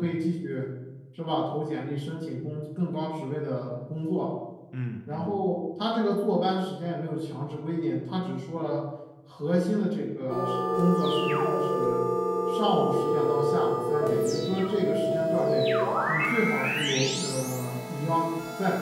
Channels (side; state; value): both; identical; correlation 1.00